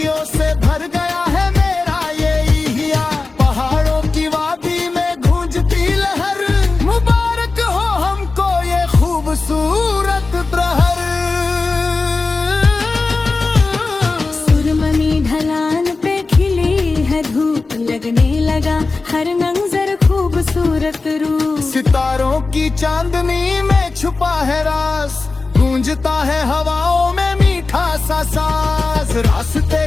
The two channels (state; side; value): quieter; right; 3.8 dB